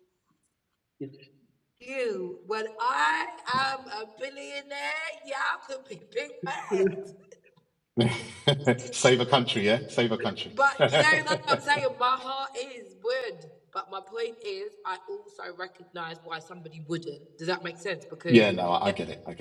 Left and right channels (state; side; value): identical; both; correlation 1.00